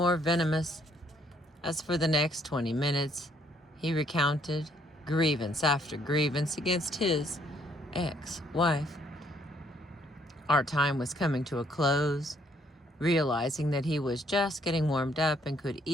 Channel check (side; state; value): both; normal; correlation 0.67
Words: venomous. As for the next 20 minutes, he recounted grievance after grievance against his ex-wife. Our time was coming to a close. Realizing that he was just getting warmed up and could